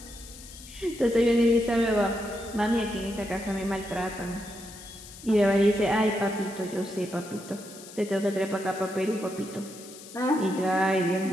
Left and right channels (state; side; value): noise; left; hiss, 17 dB below the sound